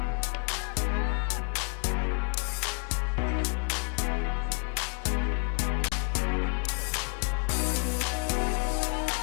outfield from left to right, we have Reese Sherwin, Lydia Swan in center, and Carson Maddox in right. Jordan Robbins will be catching Raleigh today.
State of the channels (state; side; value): quieter; right; 34.6 dB